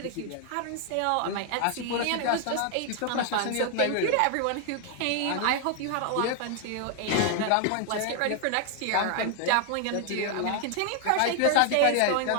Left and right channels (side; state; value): both; different; correlation 0.00